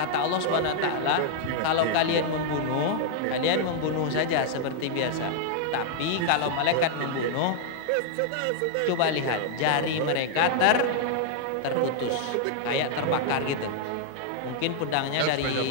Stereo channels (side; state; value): both; different; correlation -0.01